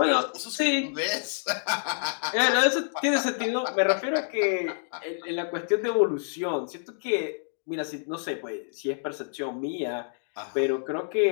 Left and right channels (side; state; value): right; silent; digital silence